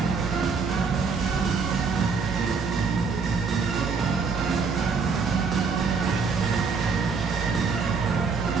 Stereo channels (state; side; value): quieter; left; 5.1 dB